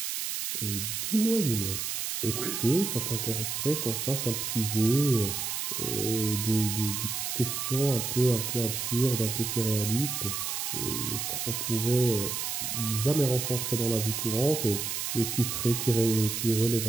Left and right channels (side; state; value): right; noise; hiss, 2 dB below the sound